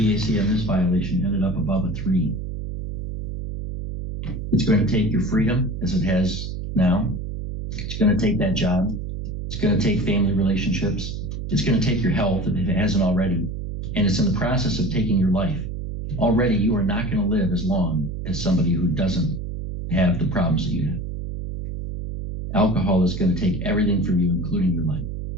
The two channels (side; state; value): right; noise; hum, 6 dB below the sound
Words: on this violation ended up above a 3. It's going to take your freedom, as it has now. It's going to take that job. It's going to take family relationships. It's going to take your health if it hasn't already. And it's in the process of taking your life. Already, you are not going to live as long as somebody who doesn't have the problems that you have. Alcohol is going to take everything from you, including your life.